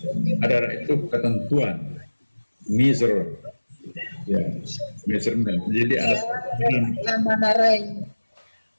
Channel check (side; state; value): both; inverted; correlation -1.00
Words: Qadar itu ketentuan, measure, ya, measurement. Jadi ada